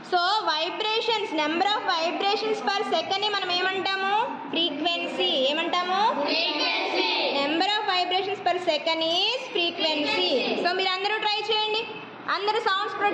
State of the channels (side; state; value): both; identical; correlation 1.00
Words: So vibrations, number of vibrations per సెకండ్ని మనం ఏమంటాము? ఫ్రీక్వెన్సీ. ఏమంటాము? Number of vibrations per second is frequency. So మీరు అందరూ ట్రై చేయండి, అందరూ సౌండ్స్